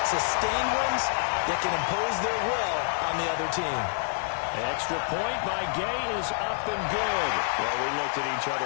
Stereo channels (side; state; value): right; silent; 57 dB below the other